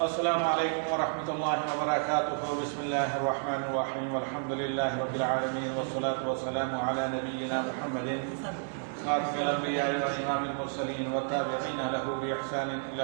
السلام علیکم ورحمۃ اللہ وبرکاتہ. بسم اللہ الرحمن الرحیم. الحمد للہ رب العالمین والصلاة والسلام علی نبینا محمد خاتم الانبیاء وامام المرسلین والتابعین له باحسان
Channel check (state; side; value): silent; left; 57 dB below the other